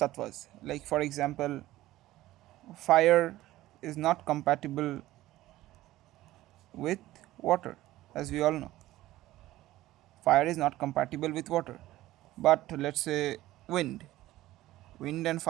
like for example fire is not compatible with water, as we all know. Fire is not compatible with water. But let's say wind. Wind and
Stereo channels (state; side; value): quieter; left; 16.0 dB